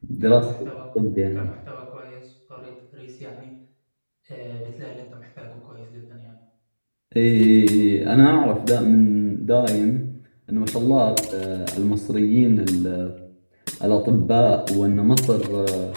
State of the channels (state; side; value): inverted; both; correlation -1.00